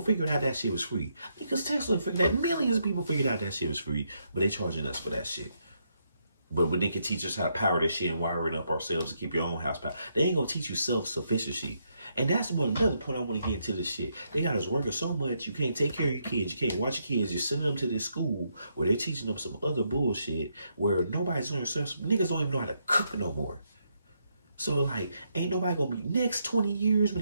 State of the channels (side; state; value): both; inverted; correlation -0.77